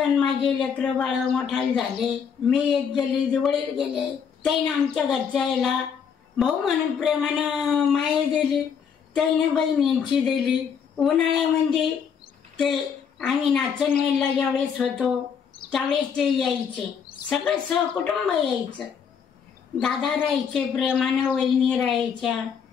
माझे लेकरं बाळ मोठाले झाले, मी एक गेले, वडील गेले. त्याने आमच्या घरच्या यायला भाऊ म्हणून प्रेमानं माया दिली, त्याने बहिणींची दिली. उन्हाळ्यामध्ये ते आम्ही नाचणवेलला ज्यावेळेस होतो त्यावेळेस ते यायचे, सगळं सहकुटुंब यायचं. दादा राहायचे प्रेमानं, वहिनी राहायच्या.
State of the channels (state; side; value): quieter; right; 7.1 dB